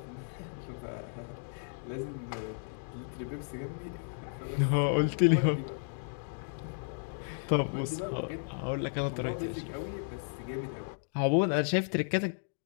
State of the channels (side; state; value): right; silent; digital silence